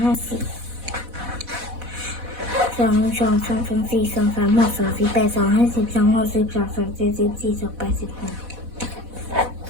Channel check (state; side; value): late; left; 4.1 ms